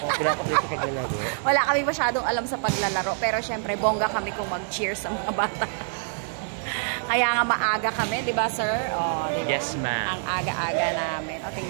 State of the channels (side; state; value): left; silent; digital silence